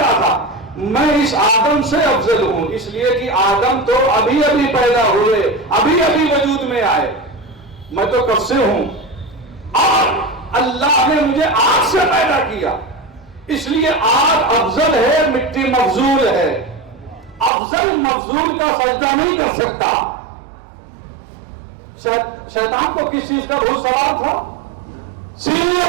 تھا؟ میں اس آدم سے افضل ہوں، اس لیے کہ آدم تو ابھی ابھی پیدا ہوئے، ابھی ابھی وجود میں آئے، میں تو کب سے ہوں، اور اللہ نے مجھے آگ سے پیدا کیا، اس لیے آگ افضل ہے، مٹی مفضول ہے، افضل مفضول کا سجدہ نہیں کر سکتا۔ شیطان کو کس چیز کا بھوت سوال تھا؟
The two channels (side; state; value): left; drops out; at 17.5 s